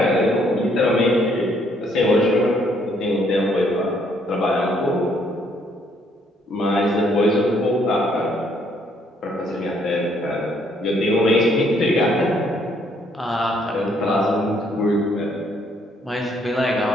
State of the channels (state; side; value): normal; both; correlation 0.68